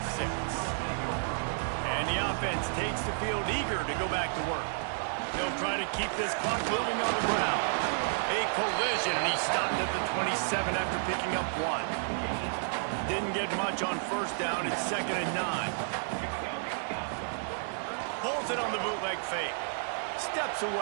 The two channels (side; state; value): left; silent; 57 dB below the other